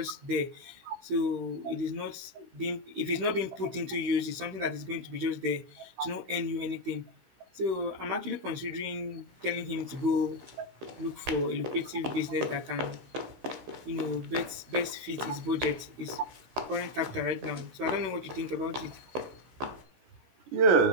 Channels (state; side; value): late; left; 16 ms